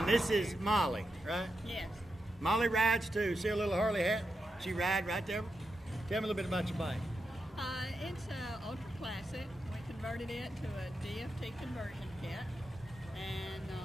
this is Molly, right? Yes. Molly rides too. See a little Harley hat? She ride right there. Tell me a little bit about your bike. It's ultra classic. We converted it to a DFT conversion kit, and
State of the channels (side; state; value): both; normal; correlation 0.87